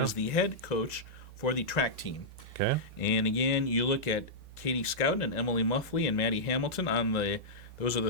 the head coach for the track team. Okay. And again, you look at Katie Scouten and Emily Muffley and Maddie Hamilton those are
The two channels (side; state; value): both; normal; correlation -0.11